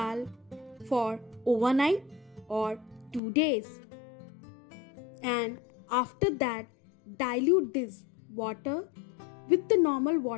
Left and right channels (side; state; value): right; drops out; at 3.2 s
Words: for overnight or 2 days. And after that, dilute this water with the normal